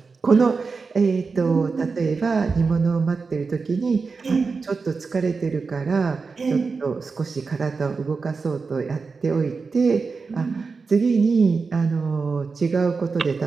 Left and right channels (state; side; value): quieter; left; 4.6 dB